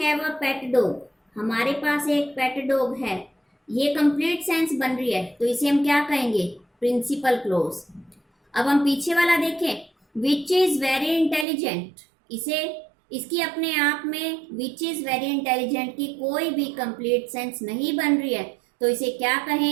a pet dog, हमारे पास एक पेट डॉग है, ये कंप्लीट सेंस बन रही है, तो इसे हम क्या कहेंगे? Principal clause. अब हम पीछे वाला देखें विच इज वेरी इंटेलिजेंट, इसे इसकी अपने आप में विच इज वेरी इंटेलिजेंट की कोई भी कंप्लीट सेंस नहीं बन रही है, तो इसे क्या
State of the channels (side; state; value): left; drops out; at 11.5 s